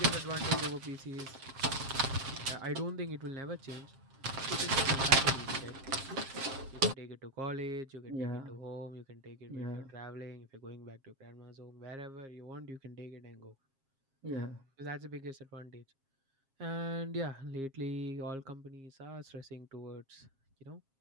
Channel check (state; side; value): late; left; 7.4 ms